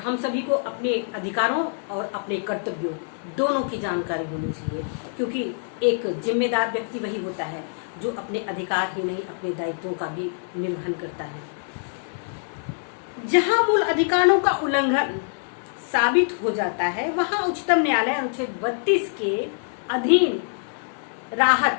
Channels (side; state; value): right; silent; digital silence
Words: सभी को अपने अधिकारों और अपने कर्तव्यों दोनों की जानकारी होनी चाहिए, क्योंकि एक जिम्मेदार व्यक्ति वही होता है जो अपने अधिकार ही नहीं अपने दायित्वों का भी निर्वहन करता है। जहां मूल अधिकारों का उल्लंघन साबित हो जाता है, वहां उच्चतम न्यायालय अनुच्छेद 32 के अधीन